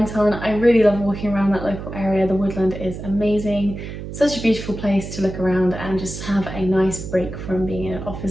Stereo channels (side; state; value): right; noise; hum, 9 dB below the sound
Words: on. I really love walking around that local area. The woodland is amazing. Such a beautiful place to look around and just have a nice break from being in an